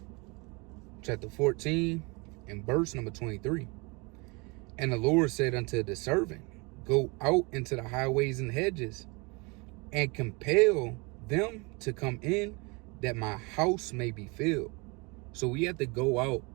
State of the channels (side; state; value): left; quieter; 28.4 dB